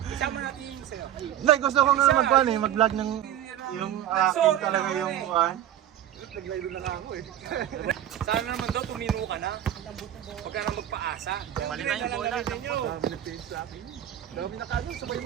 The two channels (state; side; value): quieter; left; 11.6 dB